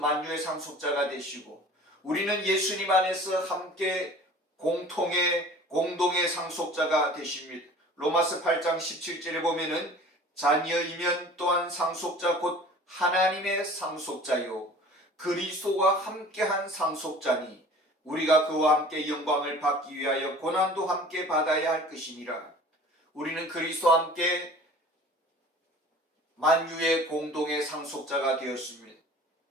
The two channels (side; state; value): both; normal; correlation 0.45